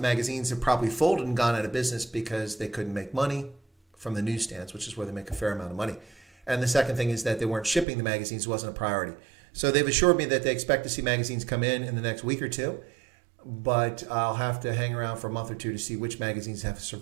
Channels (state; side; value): drops out; left; at 7.9 s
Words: magazines have probably folded and gone out of business because they couldn't make money from the newsstands, which is where they make a fair amount of money. And the second thing is that they weren't shipping the magazines, wasn't a priority. So they've assured me that they expect to see magazines come in the next week or two. But I'll have to hang around for a month or two to see which magazines have